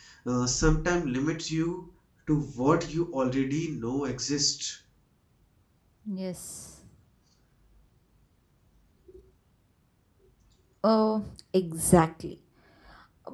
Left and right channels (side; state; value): both; identical; correlation 1.00